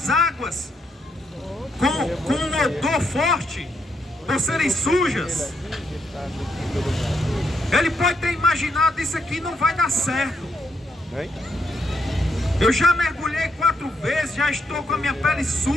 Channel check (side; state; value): both; normal; correlation 0.78